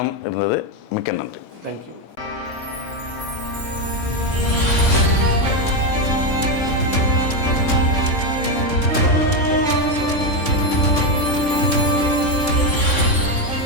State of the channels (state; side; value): late; right; 3.6 ms